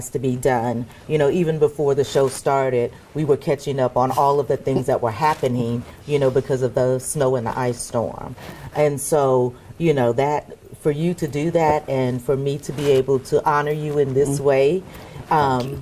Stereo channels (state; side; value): identical; both; correlation 1.00